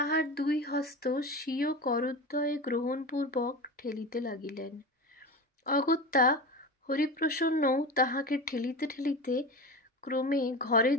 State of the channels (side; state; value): both; normal; correlation 0.27